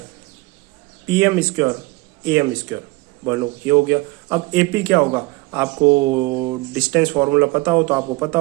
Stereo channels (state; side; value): quieter; left; 22.9 dB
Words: PM स्क्वायर AM स्क्वायर, बोलो ये हो गया। अब AP क्या होगा, आपको डिस्टेंस फॉर्मूला पता हो तो आपको पता